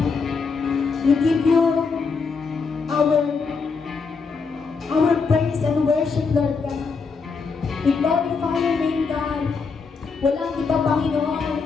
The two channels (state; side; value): quieter; right; 5.0 dB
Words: we give you our praise and worship, Lord God. We glorify your name, God. Walang iba, Panginoon,